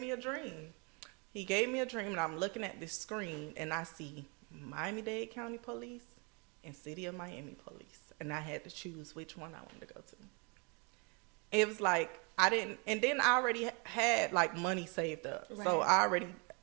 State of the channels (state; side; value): quieter; left; 32.5 dB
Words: a dream. He gave me a dream, and I'm looking at this screen, and I see Miami-Dade County Police and City of Miami Police. And I had to choose which one I wanted to go to. It was like, and then I already had, like, money saved up. Right. So